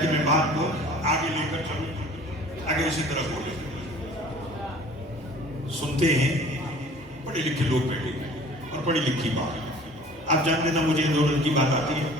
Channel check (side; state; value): both; normal; correlation 0.48